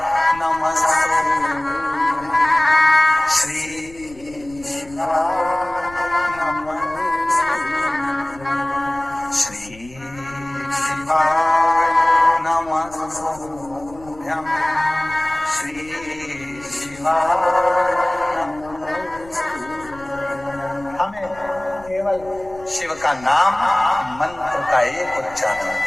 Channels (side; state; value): left; noise; rumble, 21 dB below the sound